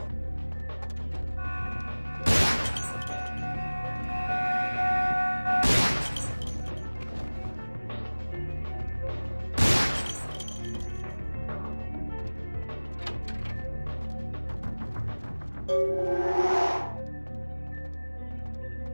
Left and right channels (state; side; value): inverted; both; correlation -1.00